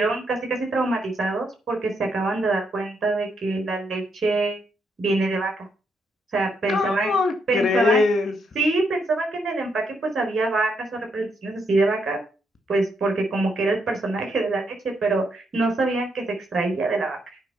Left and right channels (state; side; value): normal; both; correlation 0.77